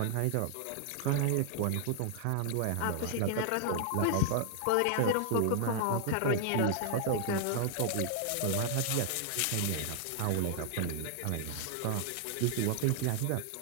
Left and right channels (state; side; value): different; both; correlation 0.00